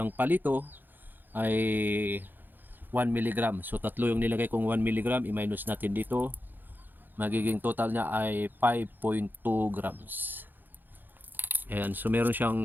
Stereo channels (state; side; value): late; left; 0.090 ms